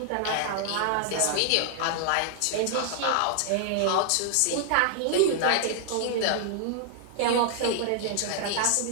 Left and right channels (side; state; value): both; different; correlation -0.01